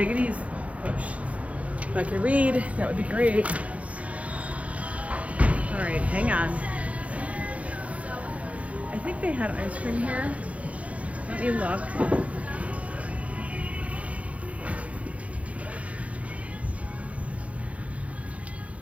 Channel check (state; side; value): late; left; 0.065 ms